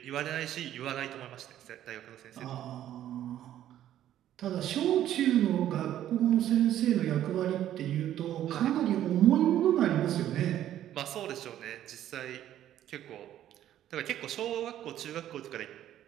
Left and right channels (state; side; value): quieter; left; 11.9 dB